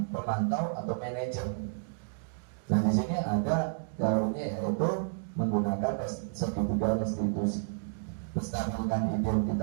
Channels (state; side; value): silent; left; digital silence